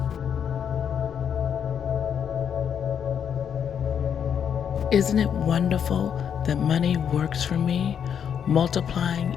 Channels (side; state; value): right; quieter; 8.0 dB